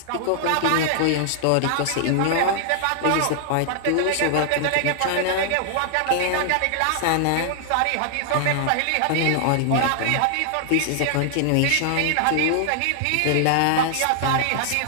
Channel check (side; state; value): both; different; correlation -0.01